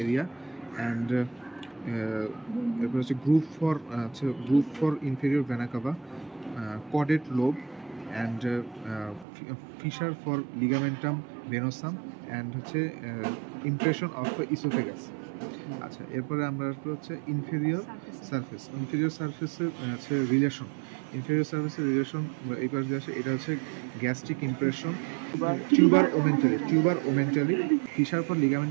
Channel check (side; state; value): left; drops out; at 9.2 s